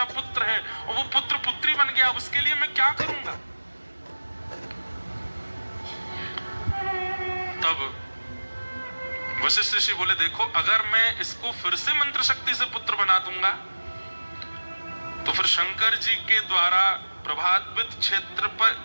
पुत्र है और वो पुत्र पुत्री बन गया, अब उसके लिए मैं क्या करूंगा। तब वशिष्ठ ऋषि बोले देखो अगर मैं इसको फिर से मंत्र शक्ति से पुत्र बना दूंगा तो फिर शंकर जी के द्वारा प्रभावित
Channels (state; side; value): inverted; both; correlation -1.00